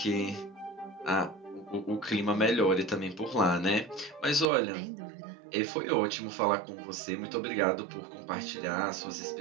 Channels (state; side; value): drops out; left; at 4.5 s